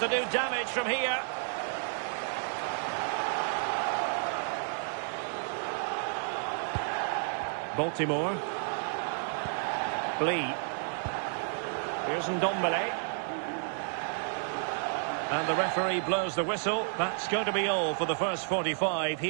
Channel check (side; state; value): left; silent; 57 dB below the other